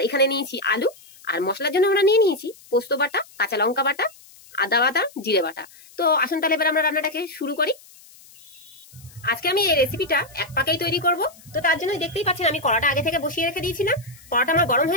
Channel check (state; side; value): noise; left; hiss, 24 dB below the sound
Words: এখানে নিয়েছি আলু, আর মশলার জন্য আমরা নিয়েছি পোস্ত বাটা, কাঁচা লঙ্কা বাটা, আদা বাটা, জিরে বাটা। তো আসুন তাহলে এবার আমরা রান্নাটাকে শুরু করি। আজকে আমি এই রেসিপিটা এক পাকেই তৈরি করব। তো তার জন্য দেখতেই পাচ্ছেন আমি কড়াটা আগে থেকে বসিয়ে রেখে দিয়েছিলাম। কড়াটা আমার গরম